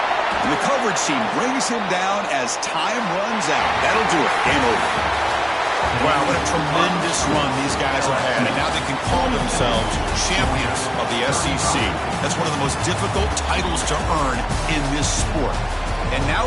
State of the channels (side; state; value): both; identical; correlation 1.00